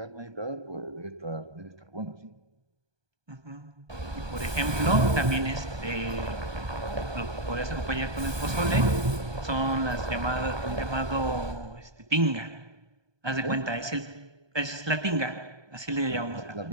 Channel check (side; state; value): left; late; 1.2 ms